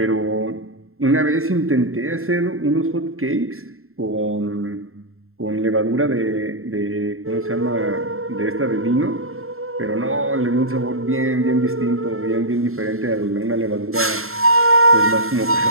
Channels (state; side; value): late; left; 0.62 ms